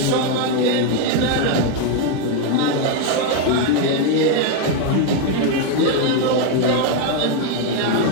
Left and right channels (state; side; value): different; both; correlation 0.01